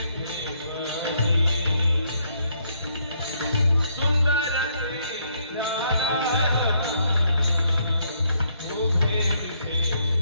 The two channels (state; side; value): inverted; both; correlation -0.72